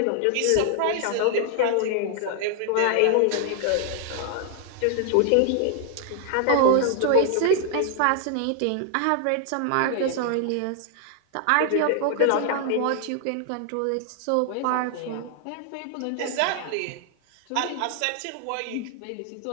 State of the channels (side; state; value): both; different; correlation 0.00